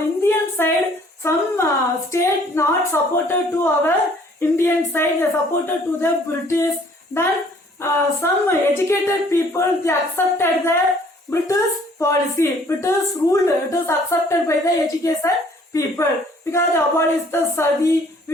side, some state not supported to our Indian side. They supported to the British. Then some educated people, they accepted the British policy. British rule, it is accepted by the educated people because they abolished the sati,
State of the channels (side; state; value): both; normal; correlation 0.58